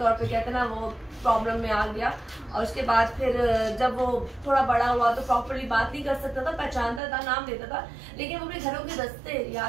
पे कहते हैं ना वो प्रॉब्लम में आ गया, और उसके बाद फिर जब वो थोड़ा बड़ा हुआ तो प्रॉपरली बात नहीं कर सकता था, पहचानता था, नाम लेता था, लेकिन वो अपने घरों के रास्ते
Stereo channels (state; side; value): drops out; left; at 7.0 s